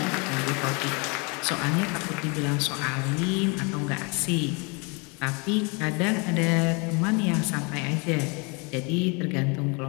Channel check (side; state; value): right; quieter; 31.3 dB